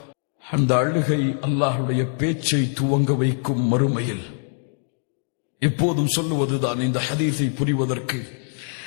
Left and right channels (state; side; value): silent; right; 58 dB below the other